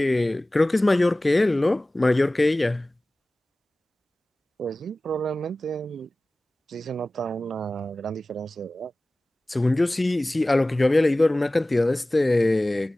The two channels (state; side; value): normal; both; correlation 0.98